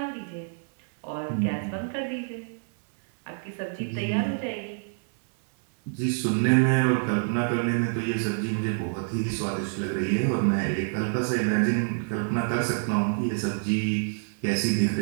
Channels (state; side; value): silent; left; 60 dB below the other